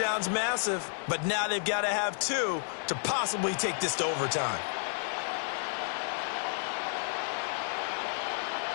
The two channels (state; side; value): silent; right; digital silence